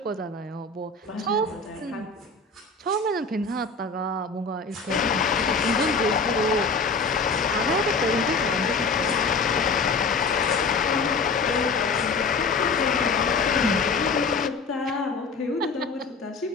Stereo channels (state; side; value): quieter; right; 4.2 dB